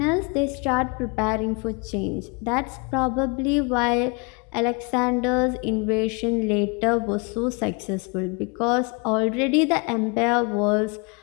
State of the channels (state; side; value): quieter; right; 31.5 dB